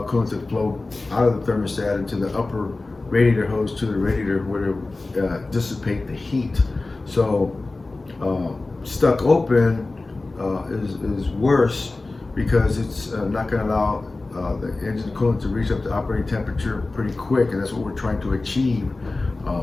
coolant to flow out of the thermostat into the upper radiator hose to the radiator, where it dissipate the heat. So stuck open is worse, because it's not going to allow the engine coolant to reach up to operating temperature pretty quick, and that's what we're trying to achieve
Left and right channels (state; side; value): quieter; right; 3.3 dB